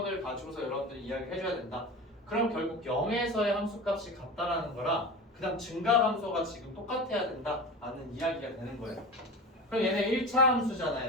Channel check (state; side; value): normal; both; correlation 0.30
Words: 가지고서 여러분들이 이야기를 해줘야 된다. 그럼 결국 0에서의 함수값이 같다라는 거라 그 다음 증가 함수가 지금 똑같아야 된다라는 이야기가 되는 거예요. 그럼 얘네 1차